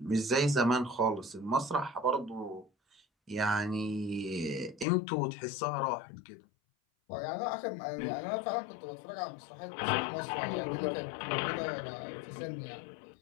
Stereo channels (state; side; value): drops out; right; at 4.9 s